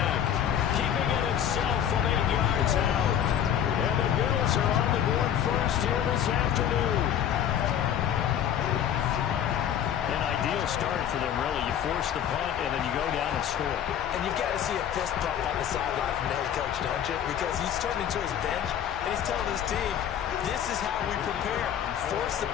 keeping it himself from 8 yards out. And the Bills are on the board first here this afternoon. An ideal start for them, really. You force the punt, and then you go down and score. And you've got to see a fist bump on the sideline from the head coach, don't you? Because he's turning to his bench, and he's telling his team, this is how we prepare. Force the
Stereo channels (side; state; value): right; quieter; 9.6 dB